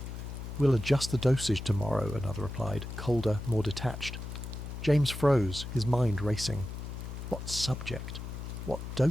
We'll adjust the dosage tomorrow, another replied, colder, more detached. James froze, his mind racing. What subject? What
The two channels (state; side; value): noise; left; hum, 8 dB below the sound